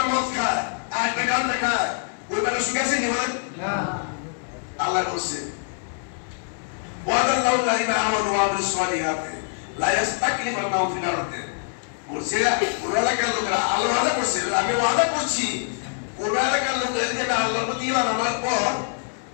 মদ খায় আর একটা গান খায়, ওই বেলা সুখে আছে নি বলেন? আল্লাহ বলছে ওয়াদাল্লাহু আলাইহিম আমানু ওয়া আমিলুস সালিহাতি লা ইস্তাকলিফান্নাহুম ফিল আরদি। বলছে কোন এলাকার লোকেরা আল্লাহ ওয়াদা করছে, আমি ওয়াদা করছি কোন এলাকার লোকেরা যদি আল্লাহর প্রতি ঈমান আনার পর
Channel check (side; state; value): right; silent; digital silence